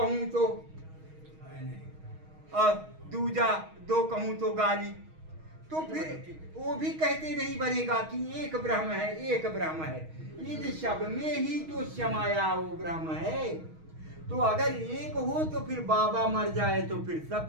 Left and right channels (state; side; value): late; left; 6.3 ms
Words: तो और दूजा दो कहूं तो गाली। तो फिर वो भी कहते नहीं बनेगा कि एक ब्रह्म है, एक ब्रह्म है। इन सब में ही तो समाया वो ब्रह्म है। तो अगर एक हो तो फिर बाबा मर जाए तो फिर